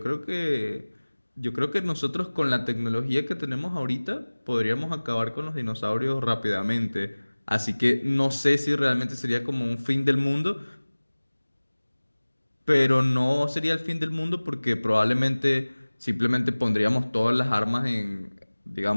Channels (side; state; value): both; inverted; correlation -1.00